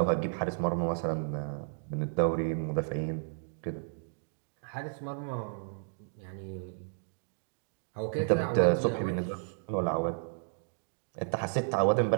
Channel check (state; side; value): silent; left; digital silence